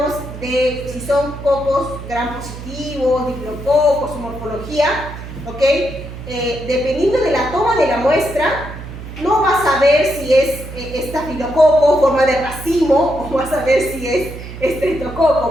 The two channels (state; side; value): noise; right; hum, 11 dB below the sound